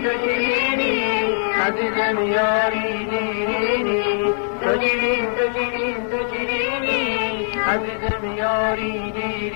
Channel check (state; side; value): silent; right; digital silence